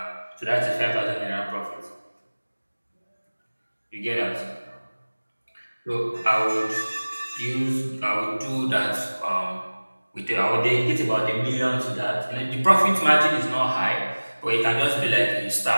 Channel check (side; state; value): both; inverted; correlation -1.00